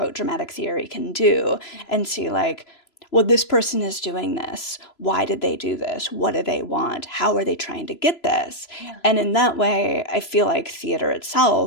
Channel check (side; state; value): right; late; 3.0 ms